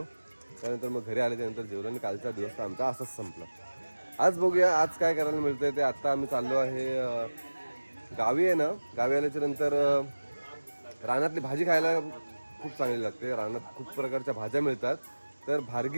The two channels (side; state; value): both; inverted; correlation -1.00